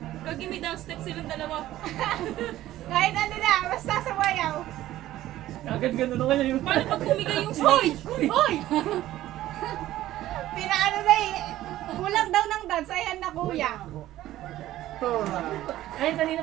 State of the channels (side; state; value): left; quieter; 14.4 dB